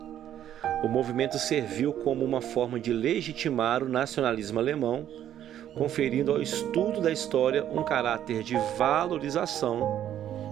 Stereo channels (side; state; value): left; quieter; 11.0 dB